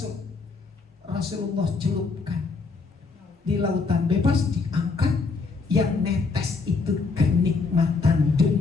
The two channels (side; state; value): right; quieter; 4.4 dB